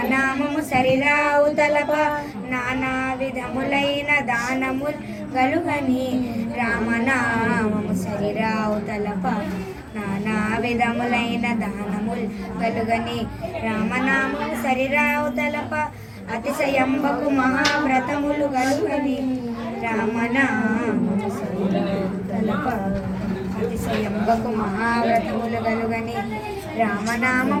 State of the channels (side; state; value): both; identical; correlation 1.00